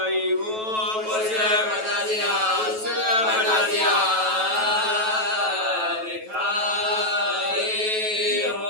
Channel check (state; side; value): late; left; 9.2 ms